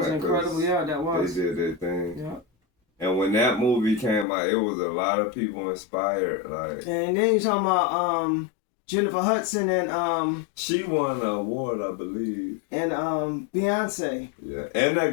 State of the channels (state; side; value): drops out; right; at 4.2 s